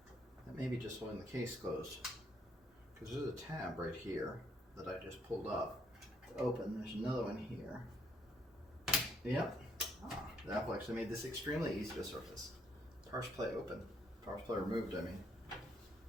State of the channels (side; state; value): both; normal; correlation 0.69